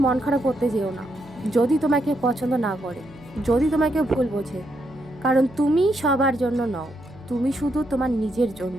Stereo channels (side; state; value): right; noise; hum, 24 dB below the sound